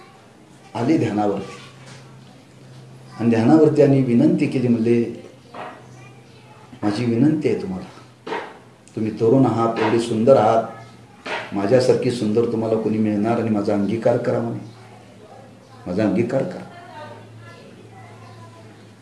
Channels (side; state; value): both; identical; correlation 1.00